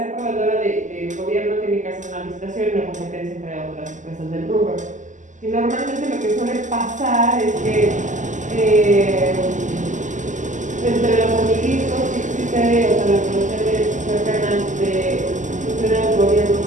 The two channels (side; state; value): left; late; 0.36 ms